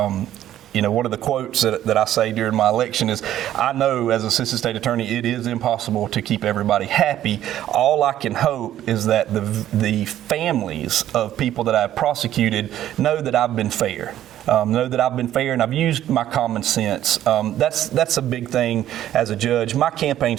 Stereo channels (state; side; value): quieter; left; 12.1 dB